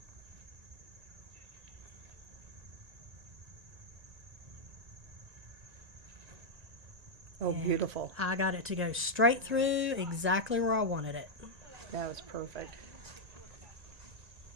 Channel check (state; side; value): late; left; 1.9 ms